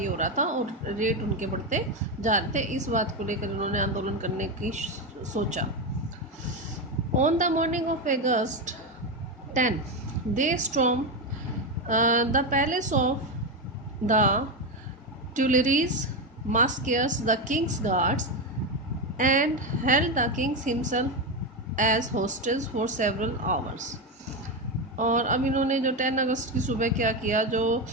हो रहा था और रेट उनके बढ़ते जा रहे थे। इस बात को लेकर उन्होंने आंदोलन करने की सोचा। On the morning of August 10 they storm the palace of the Tuileries, massacres the king's guards and held the king himself as hostage for several hours। और अब इन्होंने जो 10 अगस्त की सुबह क्या किया, जो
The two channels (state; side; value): normal; both; correlation 0.12